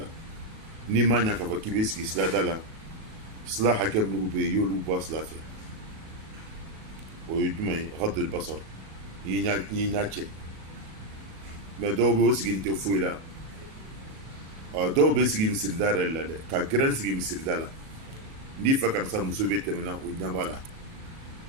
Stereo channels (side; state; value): left; late; 37 ms